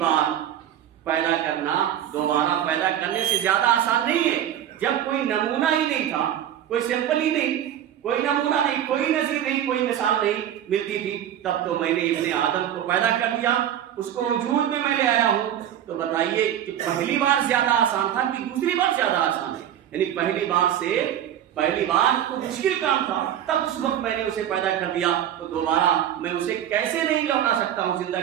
پیدا کرنا دوبارہ پیدا کرنے سے زیادہ آسان نہیں ہے. جب کوئی نمونہ ہی نہیں تھا، کوئی سیمپل ہی نہیں، کوئی نمونہ نہیں، کوئی نظیر نہیں، کوئی مثال نہیں ملتی تھی، تب تو میں نے ابن آدم کو پیدا کر دیا، اس کو وجود میں لے آیا ہوں. تو بتائیے کہ پہلی بار زیادہ آسان تھا کہ دوسری بار زیادہ آسان ہے؟ یعنی پہلی بار تو مشکل کام تھا، تب اس وقت میں نے اسے پیدا کر دیا، تو دوبارہ میں اسے کیسے نہیں لوٹا سکتا ہوں، زندہ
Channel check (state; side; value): quieter; left; 10.7 dB